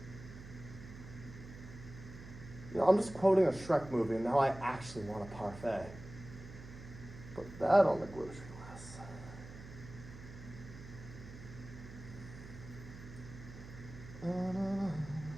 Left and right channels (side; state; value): right; noise; hum, 14 dB below the sound